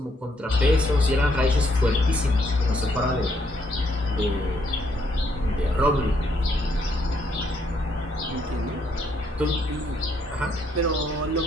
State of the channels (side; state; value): both; normal; correlation 0.72